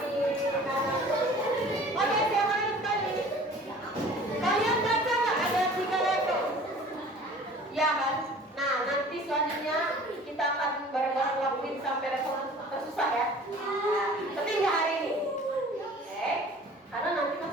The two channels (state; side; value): normal; both; correlation 0.46